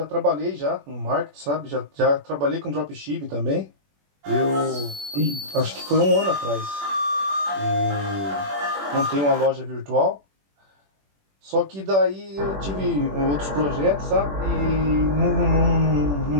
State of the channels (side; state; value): left; late; 21 ms